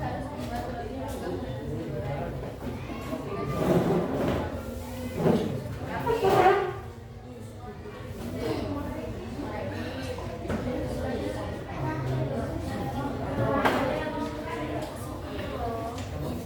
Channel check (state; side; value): identical; both; correlation 1.00